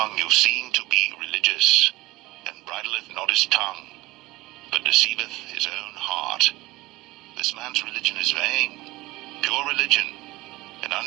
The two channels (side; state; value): left; quieter; 19.9 dB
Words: you seem to be religious, and bridleth not his tongue, but deceiveth his own heart, this man's religion is vain. Pure religion, and